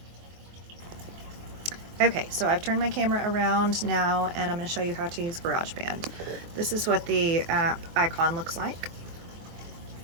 Okay, so I've turned my camera around now, and I'm going to show you how to use GarageBand. This is what the app icon looks like.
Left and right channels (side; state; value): left; late; 24 ms